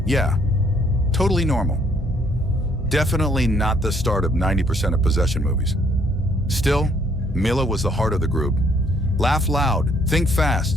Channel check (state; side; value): normal; both; correlation 0.66